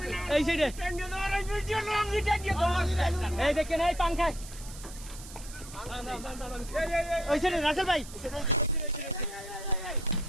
এই সাইডে এই দেখেন এই পাংখায় ওই সাইডে রাসেল ভাই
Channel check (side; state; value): right; noise; hiss, 15 dB below the sound